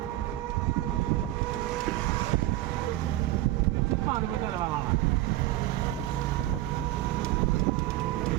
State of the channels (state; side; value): quieter; left; 15.8 dB